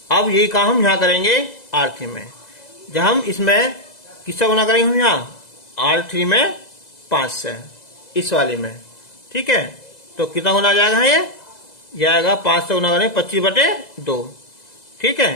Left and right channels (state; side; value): late; right; 2.0 ms